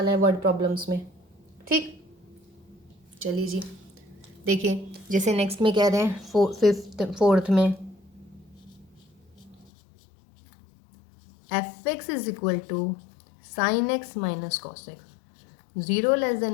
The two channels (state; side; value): drops out; right; at 9.7 s